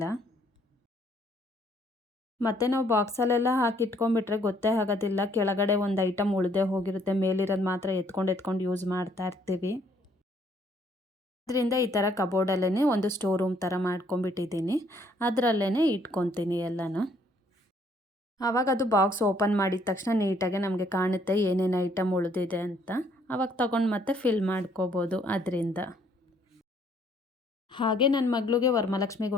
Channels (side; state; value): both; normal; correlation 0.65